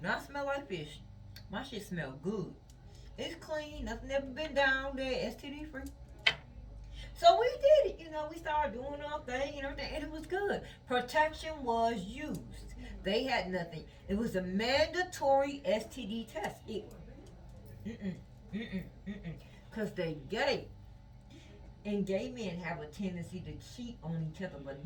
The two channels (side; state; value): both; identical; correlation 1.00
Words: not smell like fish. My shit smell good. It's clean. Nothing ever been down there. STD free. So we did it. We started doing our thing and everything, and it was good. Protection was used. They had nothing. It was a mandatory STD test. Because they gay. And gay men have a tendency to cheat on each other,